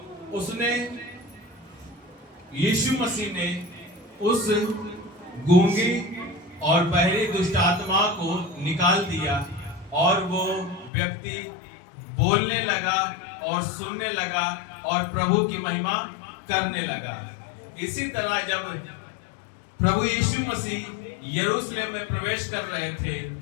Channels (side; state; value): right; drops out; at 10.9 s